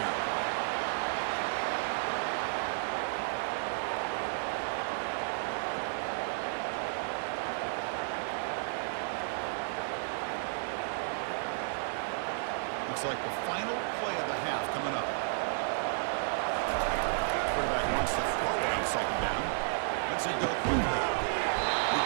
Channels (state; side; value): silent; left; digital silence